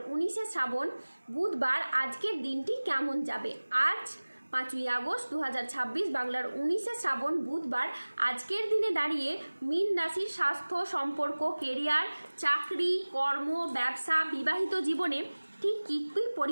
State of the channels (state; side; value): inverted; both; correlation -1.00